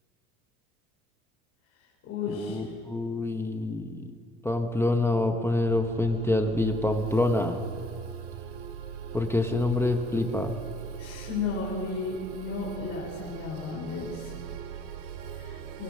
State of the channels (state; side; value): normal; both; correlation 0.65